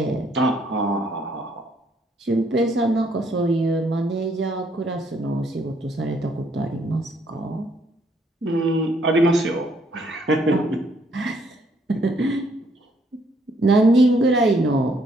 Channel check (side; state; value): both; normal; correlation 0.69